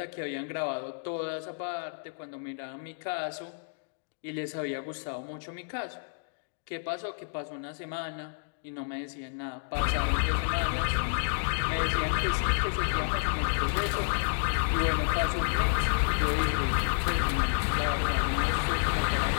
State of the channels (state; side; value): silent; right; digital silence